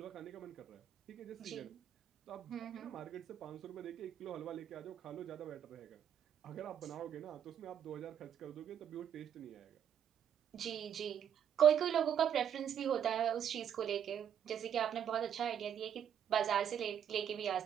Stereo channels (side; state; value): left; quieter; 9.0 dB